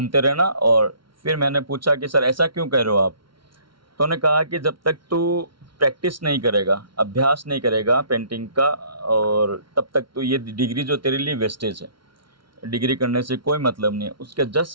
रहना। और फिर मैंने पूछा कि सर ऐसा क्यों कह रहे हो आप? तो उन्होंने कहा कि जब तक तू प्रैक्टिस नहीं करेगा, अभ्यास नहीं करेगा पेंटिंग का, और तब तक तो ये डिग्री जो तेरे लिए वेस्टेज है, डिग्री करने से कोई मतलब नहीं है। उसके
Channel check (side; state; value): left; late; 0.74 ms